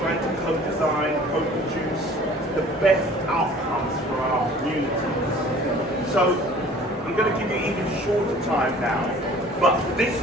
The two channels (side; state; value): both; normal; correlation 0.49